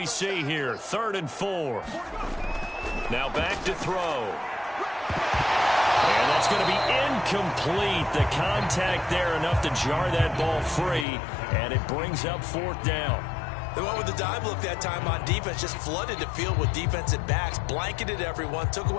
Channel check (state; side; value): drops out; right; at 11.1 s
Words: see here? 3rd and 4. Now back to throw. And that's going to be incomplete. The contact there enough to jar that ball free, and it brings up 4th down. They went with the dime look that time on defense, just flooded the field with defensive backs, blanketed everyone, took